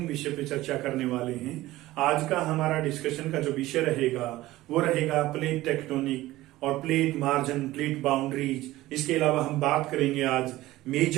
विषय पे चर्चा करने वाले हैं। आज का हमारा डिस्कशन का जो विषय रहेगा वो रहेगा प्लेट टेक्टोनिक और प्लेट मार्जिन, प्लेट बाउंड्रीज। इसके अलावा हम बात करेंगे आज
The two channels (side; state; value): left; quieter; 17.0 dB